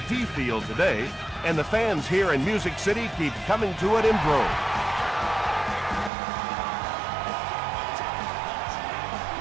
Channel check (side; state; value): left; drops out; at 6.1 s